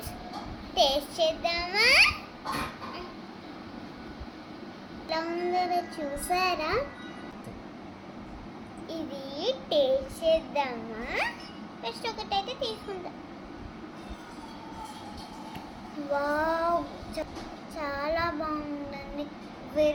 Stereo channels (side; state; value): both; identical; correlation 1.00